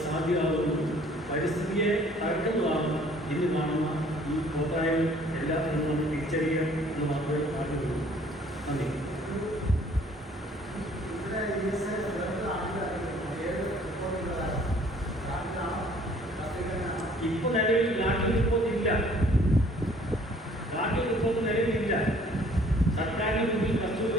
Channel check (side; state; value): both; normal; correlation 0.57